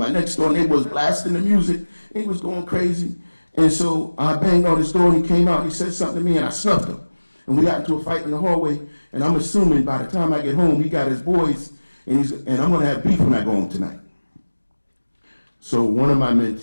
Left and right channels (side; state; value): both; inverted; correlation -1.00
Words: next door neighbor was blasting the music, and he was going crazy. And so I banged on his door, and he came out, and he said something to me, and I snuffed him. And we got into a fight in the hallway, and I'm assuming by the time I get home, he got his boys, and I'm going to have beef when I go home tonight. So one of my